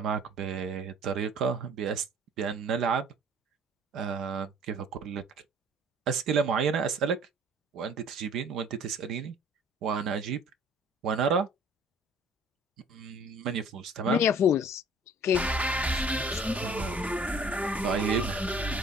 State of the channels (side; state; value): both; normal; correlation 0.51